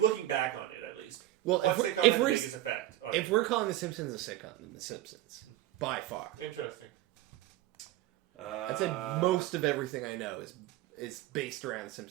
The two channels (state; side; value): quieter; left; 15.1 dB